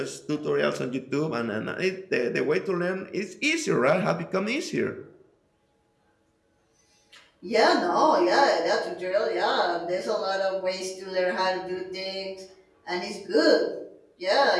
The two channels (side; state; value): both; identical; correlation 1.00